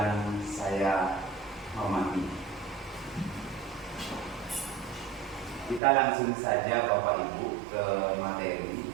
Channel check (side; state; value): left; drops out; at 5.8 s